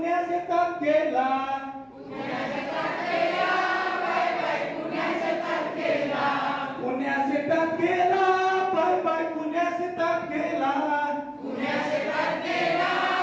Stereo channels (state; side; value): identical; both; correlation 1.00